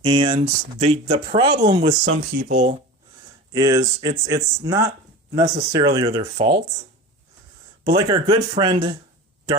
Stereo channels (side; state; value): both; normal; correlation 0.32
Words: And the problem with some people is it's not necessarily their fault, but like our good friend